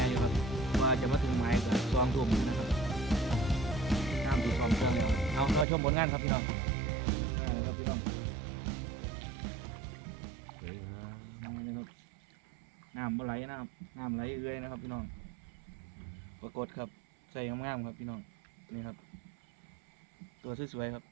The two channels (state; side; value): drops out; left; at 5.7 s